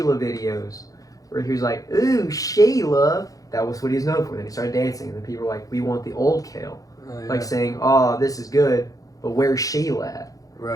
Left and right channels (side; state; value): right; late; 0.17 ms